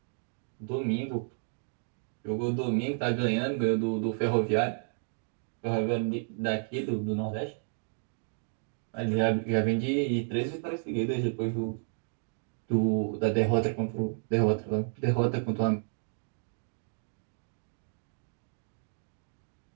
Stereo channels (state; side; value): silent; left; digital silence